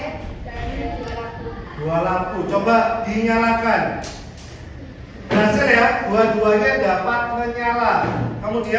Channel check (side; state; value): both; identical; correlation 1.00